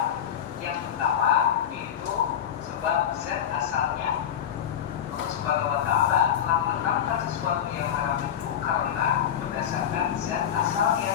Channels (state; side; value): quieter; right; 9.4 dB